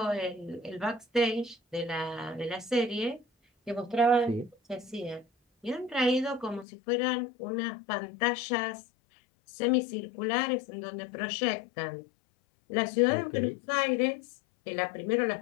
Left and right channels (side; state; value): right; drops out; at 6.7 s